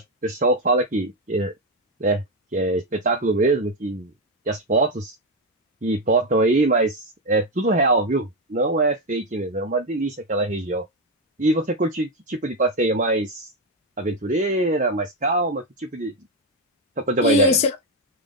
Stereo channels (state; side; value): normal; both; correlation 0.08